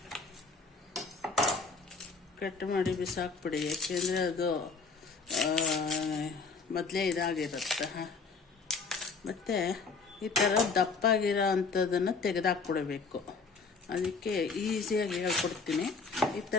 ಕಟ್ ಮಾಡಿ ಬಿಸಾಕ್ಬಿಡಿ, ಯಾಕೆಂದರೆ ಅದು ಮೊದಲೇ ಇದಾಗಿರುತ್ತೆ. ಮತ್ತು ಈ ಥರ ದಪ್ಪಾಗಿರೋ ಅಂಥದ್ದನ್ನು ತೆಗೆದಾಕ್ಬಿಡಬೇಕು. ಅದಕ್ಕೆ ಈಸಿಯಾಗಿ ಹೇಳ್ಕೊಡ್ತೀನಿ. ಈ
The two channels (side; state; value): right; quieter; 4.6 dB